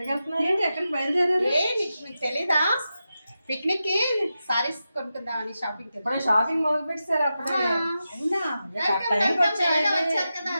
వెళ్తున్నారు? ఏంటి ఎక్కడికి బయలుదేరారు? మీకు తెలీదా? పిక్నిక్ కి సారీస్ కొనుక్కుందామని షాపింగ్ ఇప్పుడు షాపింగ్ మొదలు పెట్టారు అప్పుడే. అవునా? వచ్చారు కదా,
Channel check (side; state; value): both; inverted; correlation -0.90